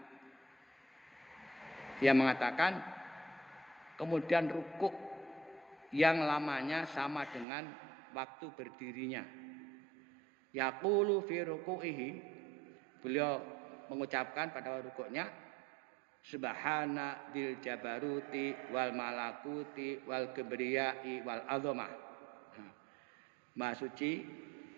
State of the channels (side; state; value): left; drops out; at 7.5 s